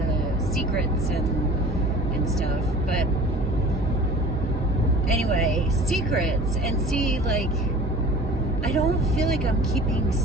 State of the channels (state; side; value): normal; both; correlation 0.44